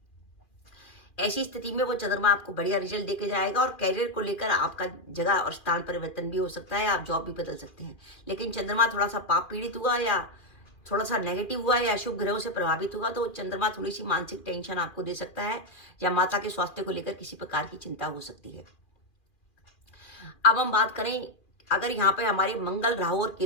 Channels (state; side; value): late; right; 2.4 ms